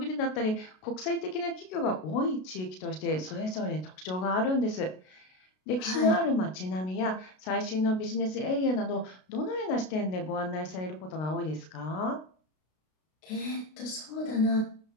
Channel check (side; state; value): right; late; 33 ms